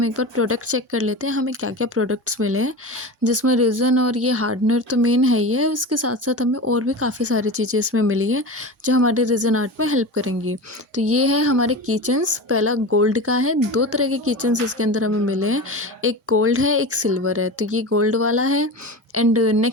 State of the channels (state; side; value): normal; both; correlation 0.28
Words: एक बार प्रोडक्ट चेक कर लेते हैं, हमें क्या क्या प्रोडक्ट्स मिले हैं। जिसमें रेज़न और ये हार्डनर तो मेन है ही है, उसके साथ साथ हमें और भी काफ़ी सारी चीज़ें इसमें मिली हैं जो हमारे रेज़न आर्ट में हेल्प करेंगी। तो ये है हमारे किचन्स। पहला गोल्ड का है। दो तरह के किचन्स इसके अंदर हमें मिले हैं, एक गोल्ड है, एक सिल्वर है। तो ये गोल्ड वाला है। एंड